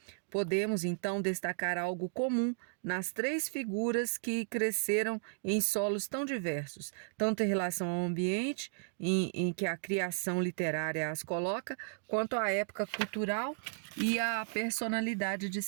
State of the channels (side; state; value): left; silent; digital silence